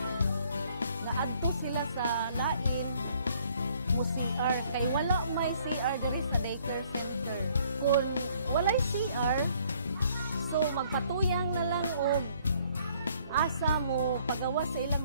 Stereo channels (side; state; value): both; inverted; correlation -0.62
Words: nga adto sila sa lain mo CR, kay wala may CR diri sa daycare center. Kung walay CR, so magpatuyang na lang og asa mo pagawas sa